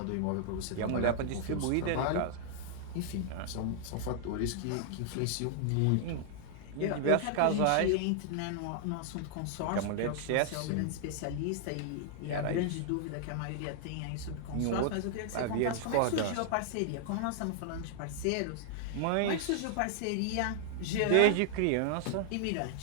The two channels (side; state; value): both; different; correlation -0.01